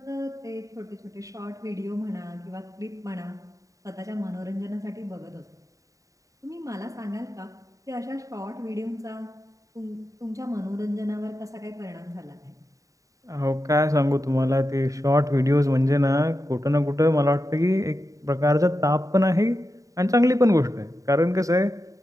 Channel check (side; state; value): left; late; 0.16 ms